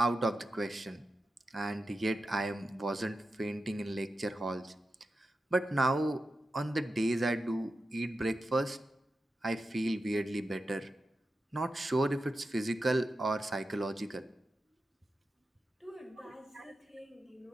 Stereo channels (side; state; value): both; normal; correlation 0.91